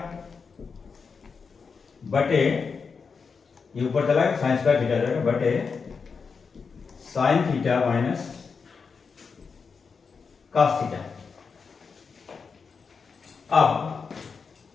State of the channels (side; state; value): right; quieter; 5.4 dB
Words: बटे, ये ऊपर चला गया साइन स्क्वायर थीटा जाएगा बटे sine theta minus cos theta. अब